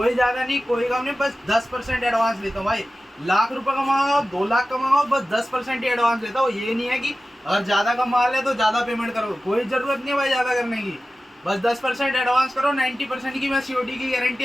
ज्यादा नहीं, कोई कम नहीं, बस 10% एडवांस लेता हूँ भाई। लाख रुपए कमाओ, 2 लाख कमाओ, बस 10% ही एडवांस लेता हूँ। ये नहीं है कि अगर ज्यादा का माल है तो ज्यादा पेमेंट करो, कोई जरूरत नहीं है भाई ज्यादा करने की। बस 10% एडवांस करो, 90% की मैं सीओडी की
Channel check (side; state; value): both; normal; correlation 0.95